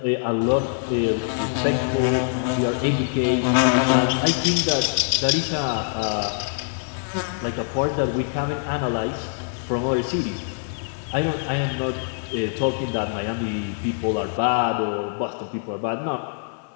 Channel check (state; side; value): silent; right; digital silence